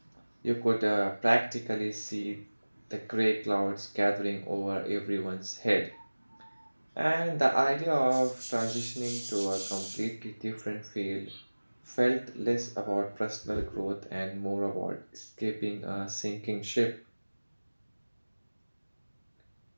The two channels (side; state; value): both; inverted; correlation -1.00